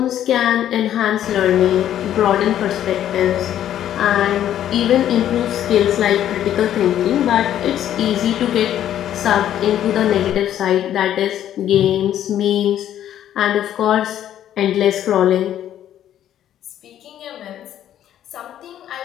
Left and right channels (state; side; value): quieter; right; 11.1 dB